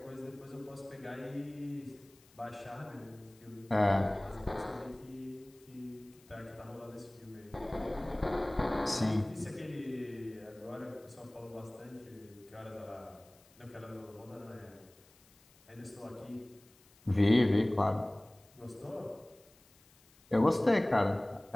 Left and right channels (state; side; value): noise; left; hiss, 28 dB below the sound